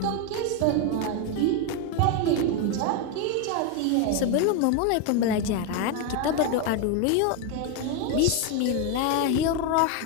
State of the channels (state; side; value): different; both; correlation 0.02